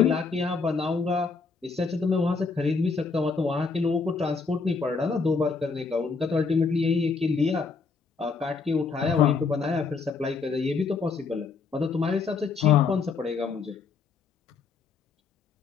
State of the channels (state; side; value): quieter; right; 4.8 dB